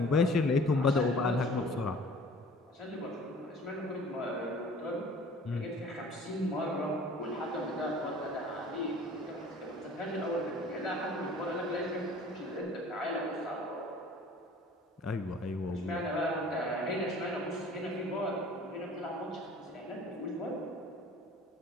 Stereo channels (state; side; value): normal; both; correlation 0.48